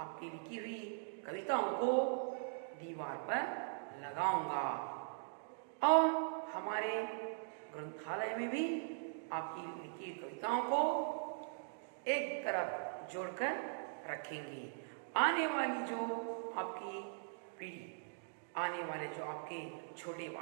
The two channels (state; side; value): silent; left; digital silence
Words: लिखी हुई कविताओं को दीवार पर लगाऊंगा और हमारे ग्रंथालय में भी आपकी लिखी कविताओं को एक तरफ जोड़कर रखेंगे। आने वाली जो आपकी पीढ़ी, आने वाले जो आपके छोटे